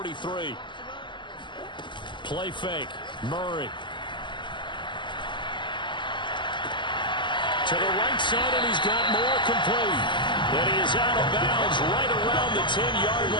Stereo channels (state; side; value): late; right; 0.23 ms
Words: Play fake. Murray. To the right side, and he's got more complete. And he is out of bounds right around the 10-yard